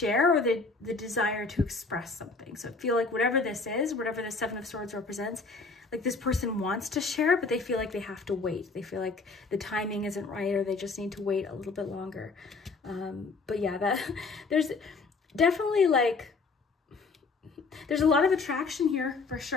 or the desire to express something. So I feel like whatever this is, whatever the Seven of Swords represents, like this person wants to share, but they feel like they have to wait. They feel like the timing isn't right, or they just need to wait a little bit longer. But yeah, there's definitely like, there's a lot of attraction here for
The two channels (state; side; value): quieter; right; 4.1 dB